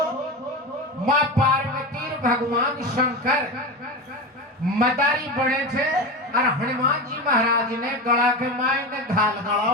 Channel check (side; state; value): both; normal; correlation 0.22